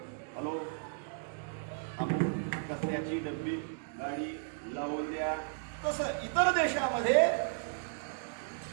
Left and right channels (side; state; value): left; silent; 55 dB below the other